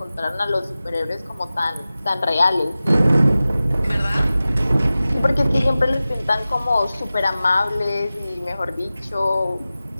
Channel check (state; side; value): inverted; both; correlation -0.96